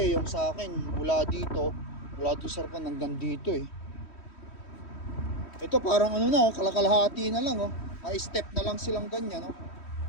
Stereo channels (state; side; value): late; right; 3.1 ms